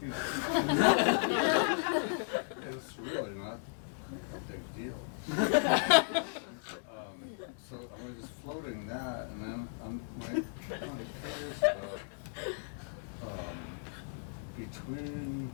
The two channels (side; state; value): right; silent; digital silence